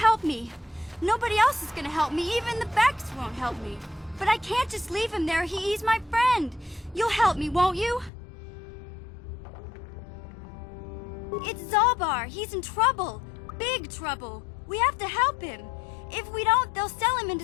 me. Nobody else is gonna help me. Even the Becks won't help me. But I can't just leave him there. He's my friend. You'll help me, won't you? It's Zalbar. He's in trouble. Big trouble. We have to help him. If we don't, they'll sell him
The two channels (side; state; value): right; drops out; at 8.1 s